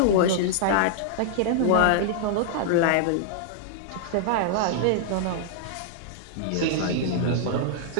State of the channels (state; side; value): different; both; correlation -0.01